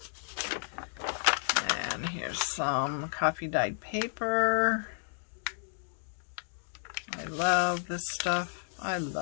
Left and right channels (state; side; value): silent; right; digital silence